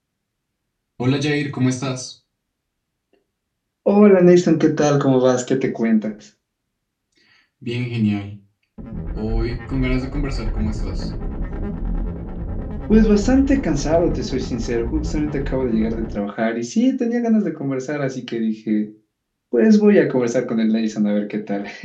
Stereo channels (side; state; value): both; identical; correlation 1.00